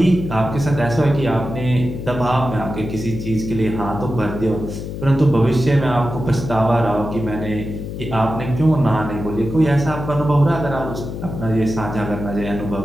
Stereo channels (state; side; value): noise; left; hum, 7 dB below the sound